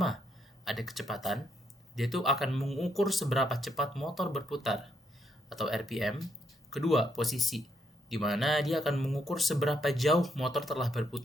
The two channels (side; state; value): both; normal; correlation 0.76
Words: ada kecepatan. Dia tuh akan mengukur seberapa cepat motor berputar atau RPM. Kedua, posisi, di mana dia akan mengukur seberapa jauh motor telah